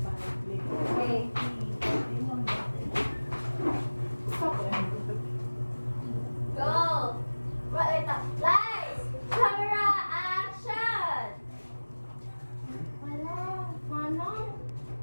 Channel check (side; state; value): both; inverted; correlation -1.00